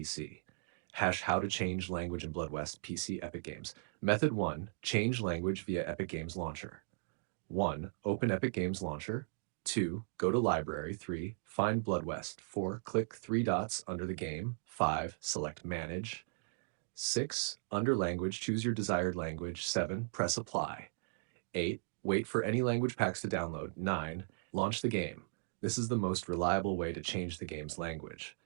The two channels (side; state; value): left; silent; digital silence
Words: Hash how to change language in Blood West PC Epic Games. Method 1, change language via Epic Games Launcher. 1. Open Epic Games Launcher. 2. Go to Library. 3. Find Blood West. 4. Click three dots under the game. 5. Select Manage. 6. Under Language, choose your desired language. 7. Press Apply. 8. Wait for any language packs to download. 9. Launch the game. This is the most reliable way to change the game's language.